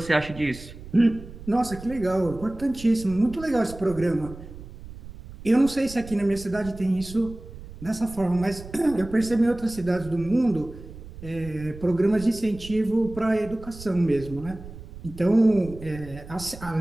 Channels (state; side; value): noise; right; rumble, 15 dB below the sound